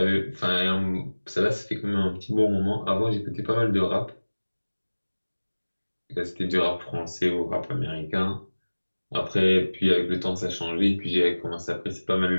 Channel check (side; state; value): both; inverted; correlation -1.00